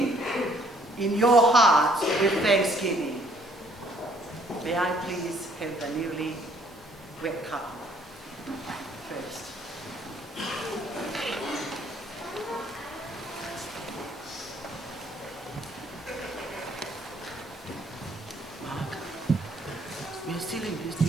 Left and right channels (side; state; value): both; normal; correlation 0.63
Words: in your hearts with thanksgiving. May I please have the newly wet cup first. Mark, we are still in this